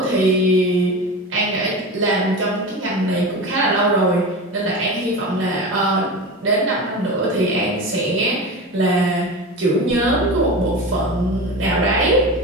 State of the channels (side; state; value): both; normal; correlation 0.27